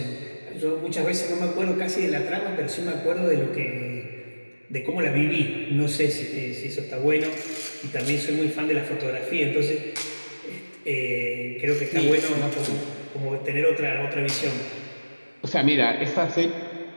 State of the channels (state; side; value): inverted; both; correlation -1.00